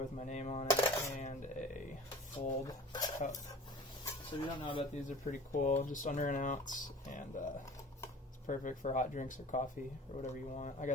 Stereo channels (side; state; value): both; normal; correlation 0.42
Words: my name on it, and a fold cup. So if you don't know about these, they're pretty cool. Just under an ounce, and it's perfect for hot drinks or coffee or whatever you want. I